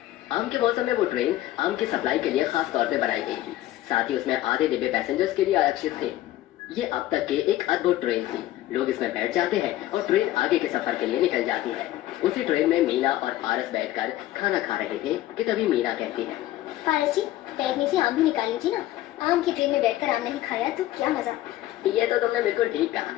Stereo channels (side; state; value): right; quieter; 14.7 dB